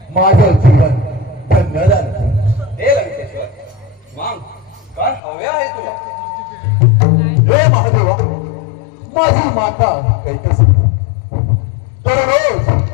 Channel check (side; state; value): right; drops out; at 5.2 s